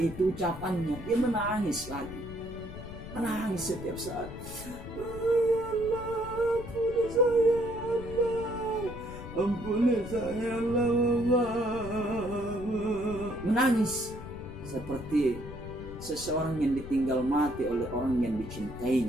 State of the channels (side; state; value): left; noise; rumble, 12 dB below the sound